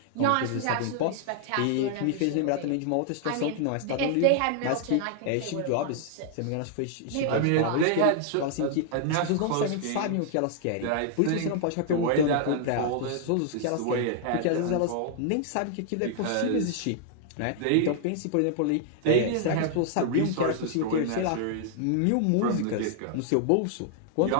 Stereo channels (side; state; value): both; different; correlation -0.01